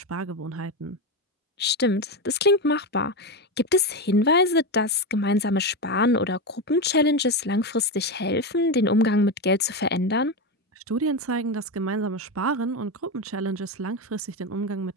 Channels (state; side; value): normal; both; correlation 0.15